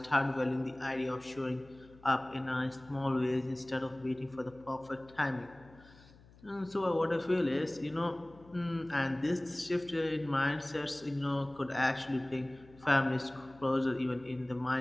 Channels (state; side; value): noise; left; hum, 24 dB below the sound